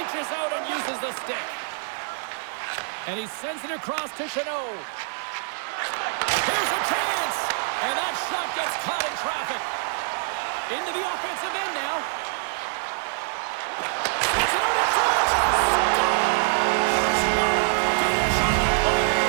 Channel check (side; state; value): left; silent; 62 dB below the other